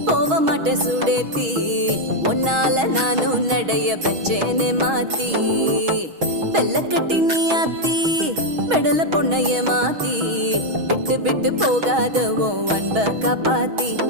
போக மாட்டேன் சுடேத்தி உன்னால நானும் நடைய பெற்றேனே மாத்தி வெள்ள கட்டி நீ ஆத்தி பெடல பொண்ணைய மாத்தி விட்டு விட்டு போகாத உன் அன்ப காப்பாத்தி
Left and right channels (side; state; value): left; late; 6.3 ms